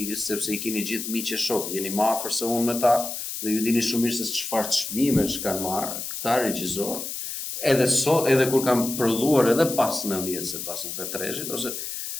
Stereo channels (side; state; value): left; noise; hiss, 6 dB below the sound